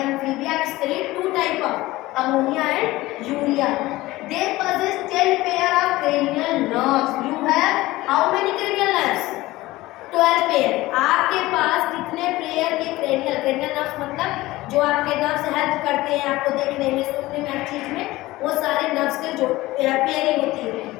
Amphibia excrete two type of ammonia and urea. They possess 10 pair of cranial nerves. You have how many cranial nerves? 12 pair. आपके पास कितने pair के cranial nerves मतलब जो आपके nerves help करते हैं आपको देखने में, सुनने में, हर चीज में, वो सारे नर्व्स के जो पेयरिंग होती है.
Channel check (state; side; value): quieter; right; 18.5 dB